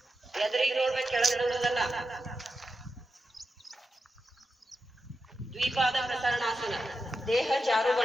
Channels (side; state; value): both; normal; correlation 0.89